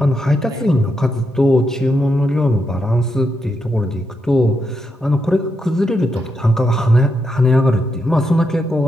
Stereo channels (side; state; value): both; normal; correlation 0.83